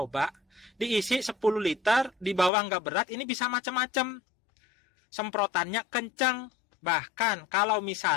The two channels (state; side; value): drops out; right; at 2.5 s